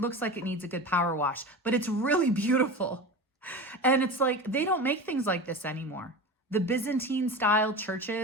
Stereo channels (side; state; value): both; normal; correlation 0.28